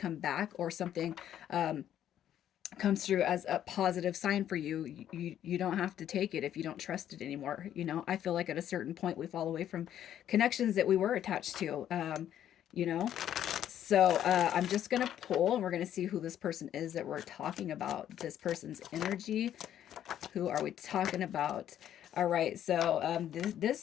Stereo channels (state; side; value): quieter; right; 10.8 dB